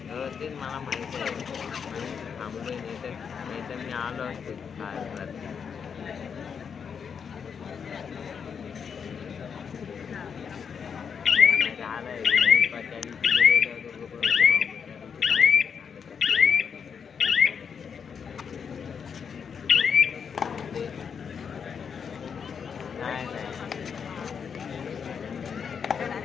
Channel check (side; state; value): right; quieter; 6.7 dB